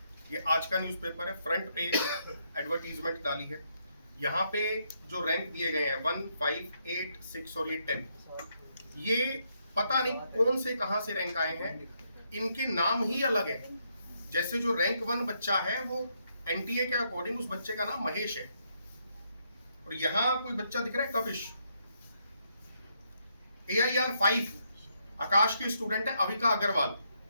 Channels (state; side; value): inverted; both; correlation -0.77